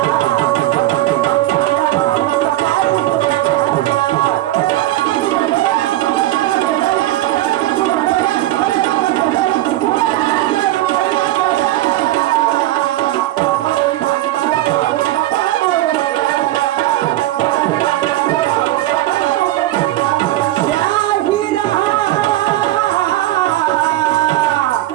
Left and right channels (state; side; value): quieter; left; 15.5 dB